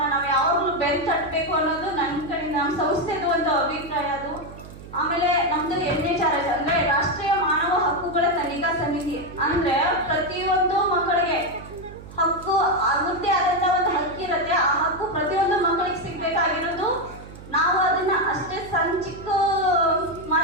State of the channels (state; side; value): noise; right; hum, 16 dB below the sound